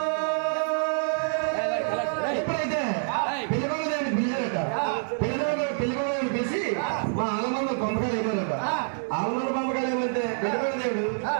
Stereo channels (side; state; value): left; silent; digital silence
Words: ఎప్పుడైతే పిల్లవాళ్ళని పిలిచారట పిల్లవాళ్ళని పిలిచి మా ఆలమంద పంపకాలు ఏమన్నారట ఆలమంద పంపకాలు ఏమంటే పిల్లవాళ్ళ దేవుడు